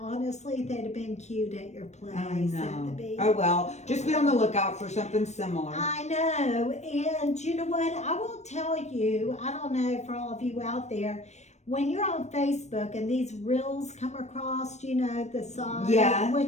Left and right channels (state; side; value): late; right; 0.33 ms